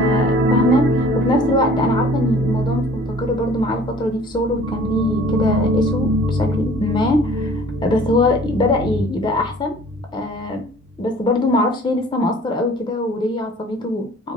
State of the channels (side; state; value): both; normal; correlation 0.50